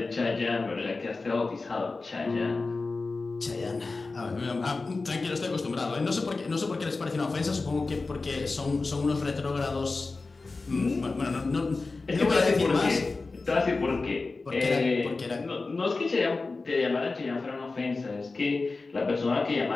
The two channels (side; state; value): right; quieter; 3.7 dB